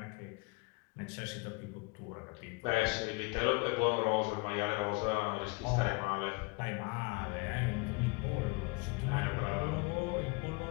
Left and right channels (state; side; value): quieter; right; 27.1 dB